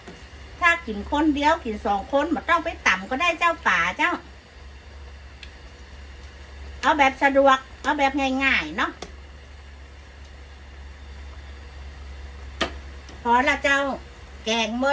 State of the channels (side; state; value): both; identical; correlation 1.00